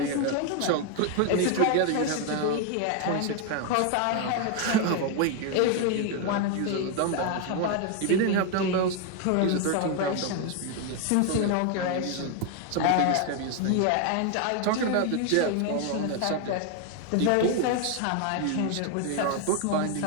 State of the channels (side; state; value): both; different; correlation 0.01